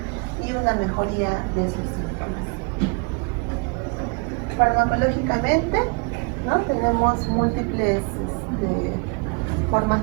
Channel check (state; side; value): quieter; left; 31.1 dB